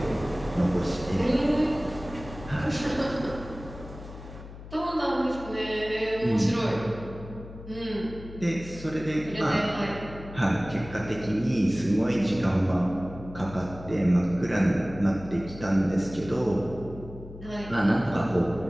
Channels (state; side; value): noise; left; hum, 14 dB below the sound